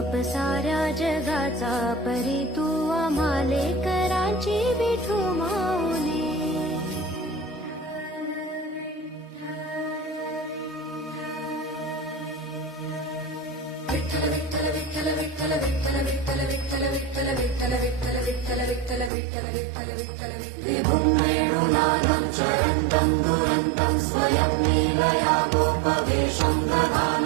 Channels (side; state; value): left; drops out; at 19.1 s